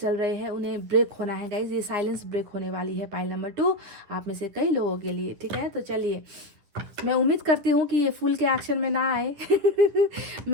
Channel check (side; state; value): left; late; 10 ms